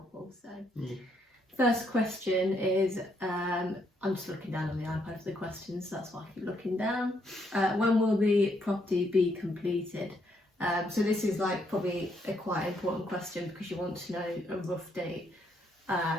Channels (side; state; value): both; normal; correlation 0.74